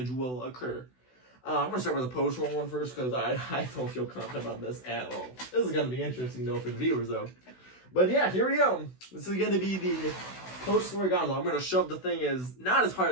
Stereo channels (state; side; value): late; right; 16 ms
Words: will occur. I'm going to start with the post-roll one first because I don't feel confident about this at all. This is going to be interesting though for the viewers though. But yeah, here we go. This is going to be the post-roll gondola. I'm going to shove the thing not as hard